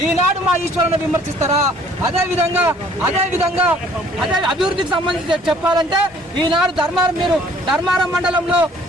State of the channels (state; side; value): normal; both; correlation 0.57